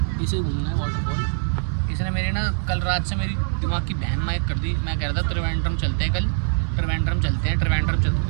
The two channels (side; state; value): left; silent; digital silence